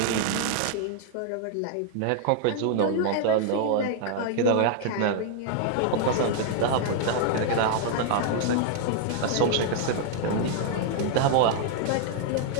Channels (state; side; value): different; both; correlation 0.00